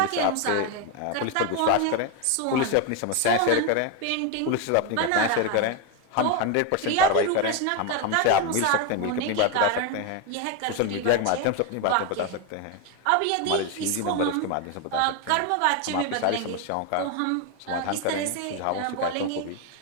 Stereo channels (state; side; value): different; both; correlation 0.02